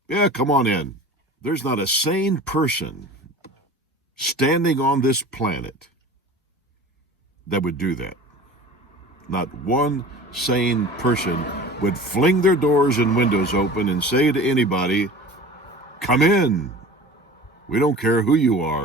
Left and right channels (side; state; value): both; normal; correlation 0.39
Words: Yeah, come on in. There's not a sane person standing on this planet that would do that. Not one sane person would fling their doors and windows open and say to anybody, come in. We don't care who you